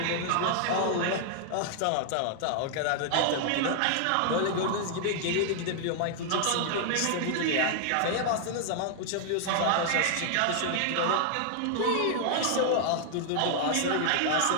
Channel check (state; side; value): different; both; correlation -0.01